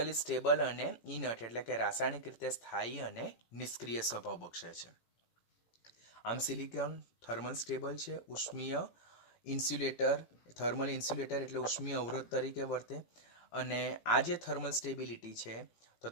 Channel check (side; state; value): right; late; 17 ms